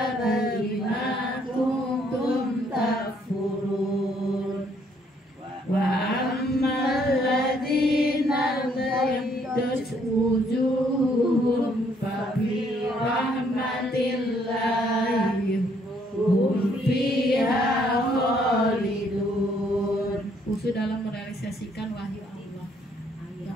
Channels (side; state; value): both; normal; correlation 0.67